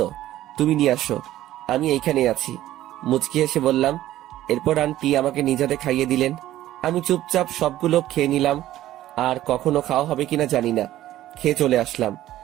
তুমি নিয়ে আসো, আমি এইখানেই আছি, মুচকি এসে বললাম। এরপর আন্টি আমাকে নিজ হাতে খাইয়ে দিলেন। আমি চুপচাপ সবগুলো খেয়ে নিলাম। আর কখনো খাওয়া হবে কিনা জানি না, খেয়ে চলে আসলাম।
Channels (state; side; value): quieter; left; 14.0 dB